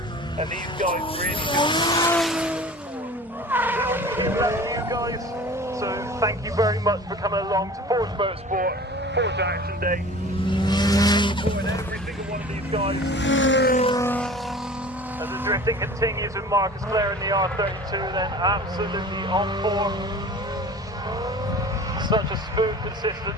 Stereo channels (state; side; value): normal; both; correlation 0.41